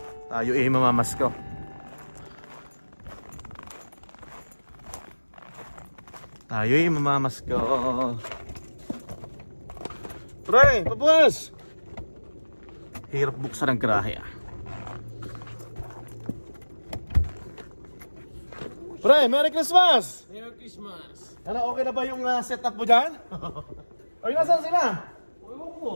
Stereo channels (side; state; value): both; inverted; correlation -1.00